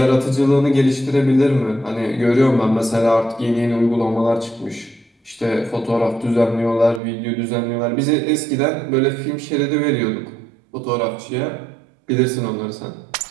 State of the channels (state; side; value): drops out; left; at 7.0 s